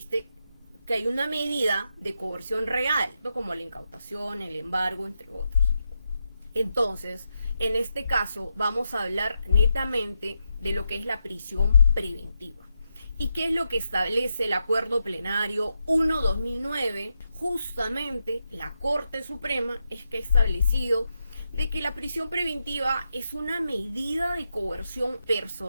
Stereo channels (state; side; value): inverted; both; correlation -0.85